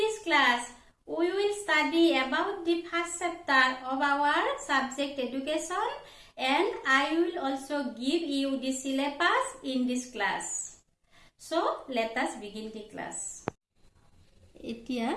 class, we will study about the first chapter of our subject education and I will also give you the syllabus in this class. So, let us begin the class. এতিয়া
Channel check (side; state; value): both; identical; correlation 1.00